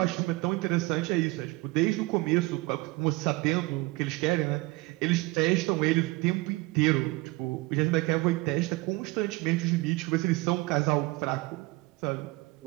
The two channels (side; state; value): left; quieter; 22.9 dB